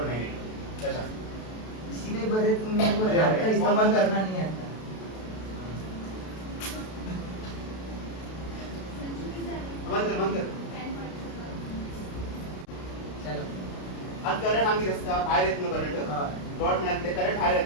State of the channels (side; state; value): right; late; 32 ms